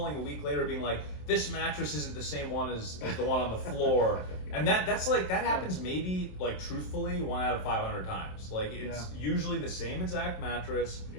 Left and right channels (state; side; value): late; right; 27 ms